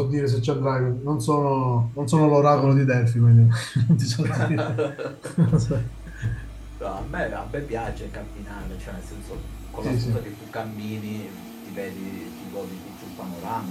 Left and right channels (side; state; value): both; identical; correlation 1.00